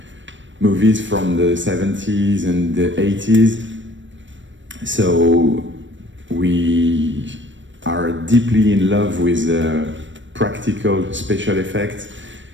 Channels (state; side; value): late; left; 0.55 ms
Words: movies from the 70s and the 80s. So we are deeply in love with practical special effects